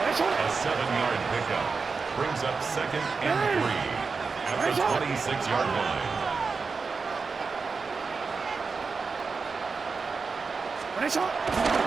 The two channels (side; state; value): left; quieter; 4.7 dB